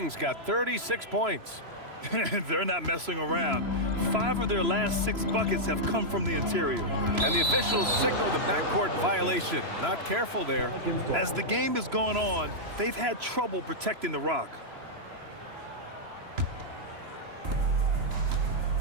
got 36 points. They're not messing around. 5 of their last 6 buckets have come from the interior. And the officials signal the backcourt violation. Not careful there. As the game has gone on, they've had trouble protecting the rock.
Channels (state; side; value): late; left; 3.0 ms